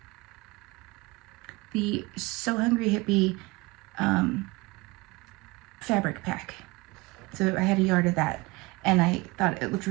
the So Hungry Hippie fabric pack. So I had a yard of that, and I thought it looked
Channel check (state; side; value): quieter; left; 23.4 dB